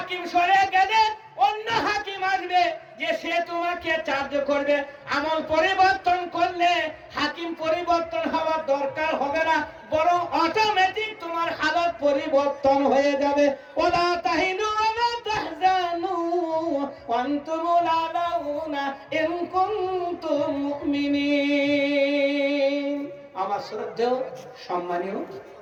সরে গেলে অন্য হাকিম আসবে, যে সে তোমাকে চার্জ করবে। আমল পরিবর্তন করলে হাকিম পরিবর্তন হওয়ার দরকার হবে না, বরং অটোমেটিক তোমার হালত পরিবর্তন হয়ে যাবে। ওয়ালা তাহিনু ওয়ালা তাহজানু ওয়া আনতুমুল আলাউনা ইন কুনতুম মুমিনিন। আমার শ্রদ্ধেয় সম্মানীয়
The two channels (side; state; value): both; identical; correlation 1.00